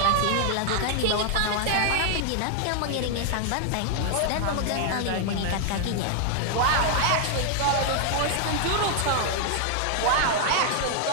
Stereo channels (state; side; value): different; both; correlation 0.00